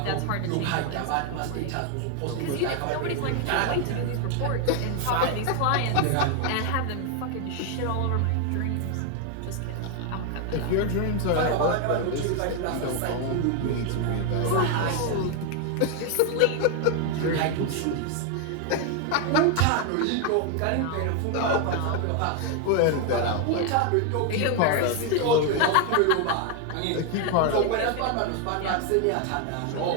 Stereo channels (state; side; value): different; both; correlation 0.01